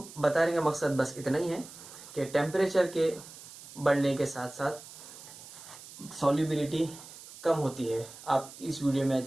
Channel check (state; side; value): noise; right; hiss, 16 dB below the sound